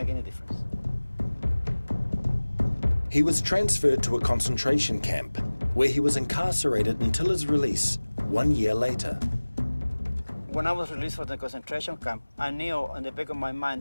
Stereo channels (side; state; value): both; inverted; correlation -1.00